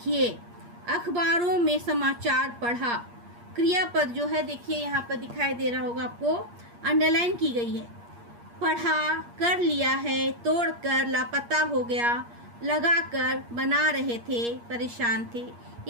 अखबारों में समाचार पढ़ा। क्रियापद जो है देखिए यहाँ पर दिखाई दे रहा होगा आपको, अंडरलाइन की गई है। पढ़ा, कर लिया है, तोड़कर, लापता हो गया, लगाकर, बना रहे थे, परेशान थे,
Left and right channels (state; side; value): late; left; 8.5 ms